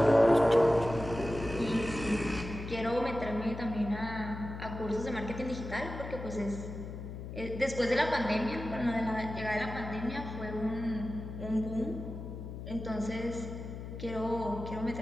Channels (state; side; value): noise; left; hum, 9 dB below the sound